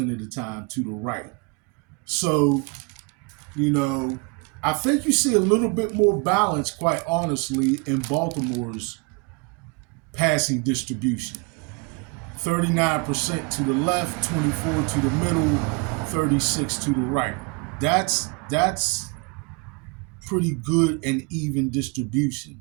of the time to the right. So, I think you see a little bit more balance, quite honestly, in Baltimore's passing distribution. 39% to the left, 24 to the middle, 36 to the right. That's pretty good and even distribution,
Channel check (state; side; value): quieter; left; 30.7 dB